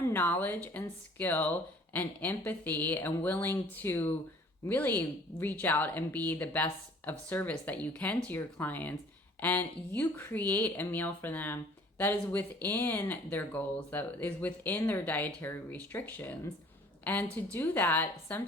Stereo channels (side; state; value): both; normal; correlation 0.53